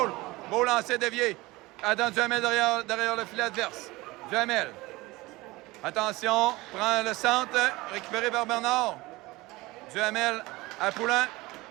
Beau lancer dévié. Adam Duhamel derrière le filet adverse. Duhamel. Attention. Prend le centre. Récupéré par Bernard. Duhamel à Poulin.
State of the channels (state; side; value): quieter; left; 21.1 dB